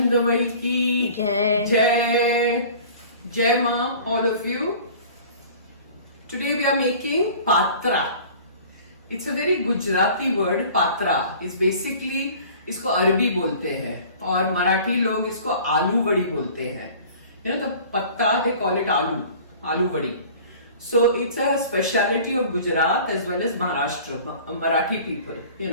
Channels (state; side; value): inverted; both; correlation -0.45